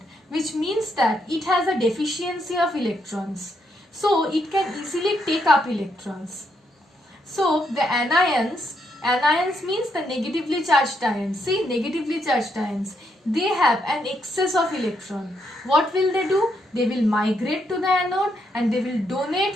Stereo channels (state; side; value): normal; both; correlation 0.77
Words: which means that it has a deficiency of electrons. So it can easily take up electrons. So the anions means the negatively charged ions. See, negatively charged ions, they have an excess of electron. What will they do? They will migrate to the anode and they will